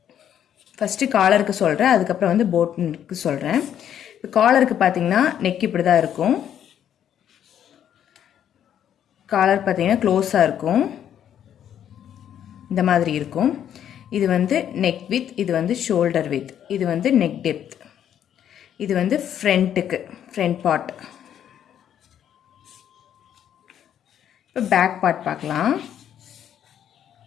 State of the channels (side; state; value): right; quieter; 9.8 dB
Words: ஃபர்ஸ்ட் collarக்கு சொல்றேன், அதுக்கு அப்புறம் வந்து boatக்கு சொல்றேன். இப்போ collarக்கு பாத்தீங்கன்னா neck இப்படி தான் இருக்கும். collar பாத்தீங்கன்னா க்ளோஸா இருக்கும். இந்த மாதிரி இருக்கும். இது வந்து neck width, இது வந்து shoulder width, இது வந்து neck depth, இது வந்து front part. இப்போ back part பார்க்கலாம்.